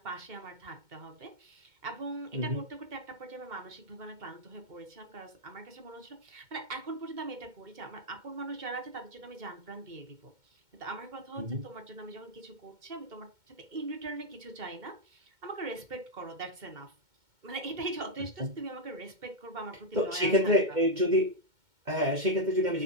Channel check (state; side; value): late; left; 2.2 ms